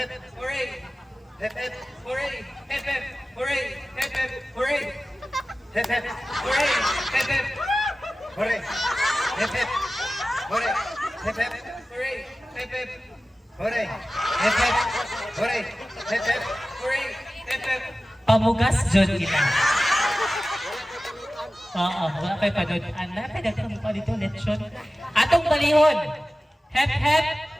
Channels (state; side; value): normal; both; correlation 0.96